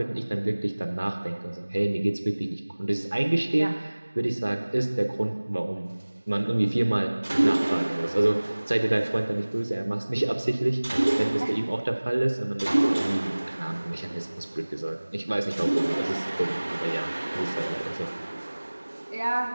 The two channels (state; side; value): inverted; both; correlation -1.00